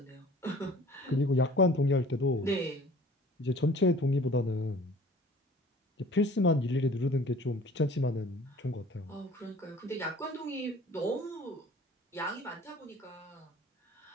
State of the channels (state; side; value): normal; both; correlation 0.48